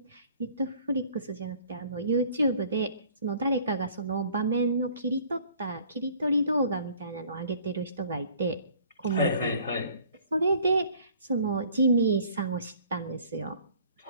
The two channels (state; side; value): inverted; both; correlation -0.54